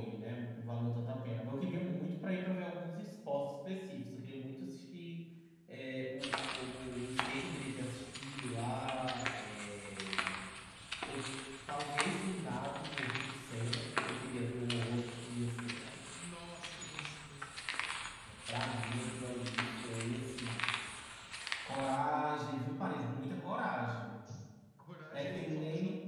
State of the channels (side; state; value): both; identical; correlation 1.00